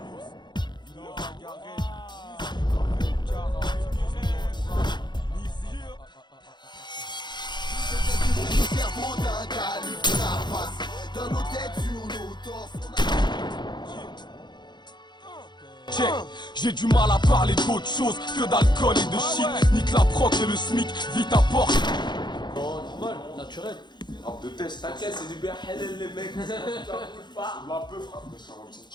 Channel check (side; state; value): right; late; 0.21 ms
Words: Cerveau d'un calibre de la face, dans nos têtes, sur nos torses. Check, j'ai du mal à parler d'autre chose que d'alcool et de shit. Nique la proc et le smic, vite à porte. Oh, normal, naturel. Rap de test, T'inquiète, c'est du bien halal les mecs, ça bouge pas. c'est de la peu, frère, mais ça va me